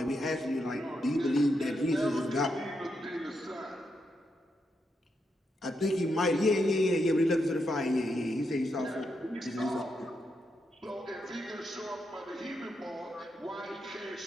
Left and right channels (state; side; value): normal; both; correlation 0.82